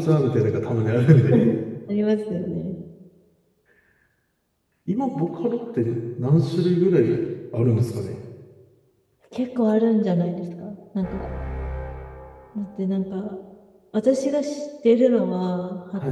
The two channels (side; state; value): both; identical; correlation 1.00